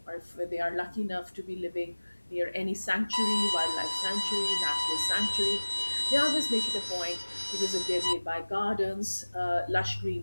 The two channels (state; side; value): inverted; both; correlation -1.00